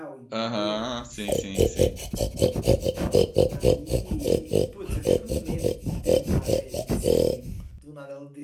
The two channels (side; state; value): both; identical; correlation 1.00